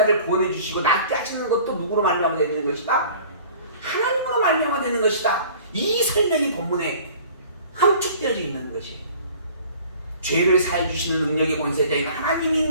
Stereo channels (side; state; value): both; inverted; correlation -0.47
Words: 구원해 주시고 낫게 하시는 것도 누구로 말미암아 되는 것이다? 하나님으로 말미암아 되는 것이다. 이 설명이 본문에 함축되어져 있는 것이에요. 죄를 사해 주시는 능력의 권세자인